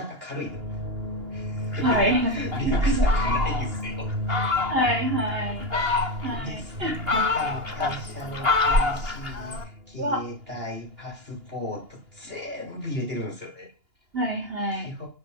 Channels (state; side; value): late; left; 2.9 ms